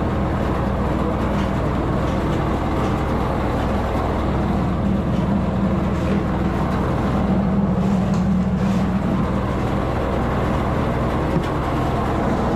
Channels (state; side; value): identical; both; correlation 1.00